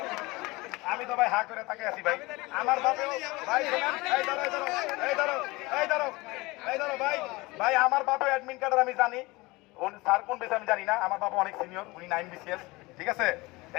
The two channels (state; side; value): quieter; right; 22.6 dB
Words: আমি তো ভাই হা করে তাকে আছি ভাই। আমার বাপেও ভাই ভাই আমার বাপেও অ্যাডমিন কার্ডের আমি জানি। স্যার কোন বেশি আমি জানি না। আমার বাবা অনেক সিনিয়র, উনি 9 বিসিএস। ঠিক আছে,